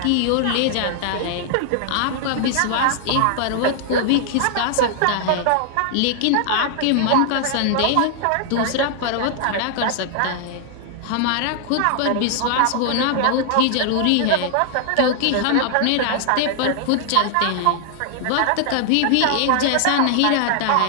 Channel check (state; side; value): different; both; correlation 0.00